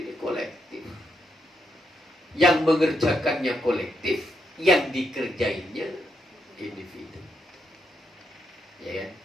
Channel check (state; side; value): normal; both; correlation 0.80